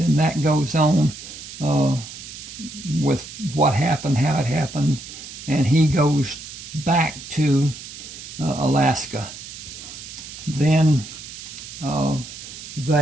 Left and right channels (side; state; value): right; noise; hiss, 13 dB below the sound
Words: that goes on with what happened, how it happened, and he goes back to Alaska. Then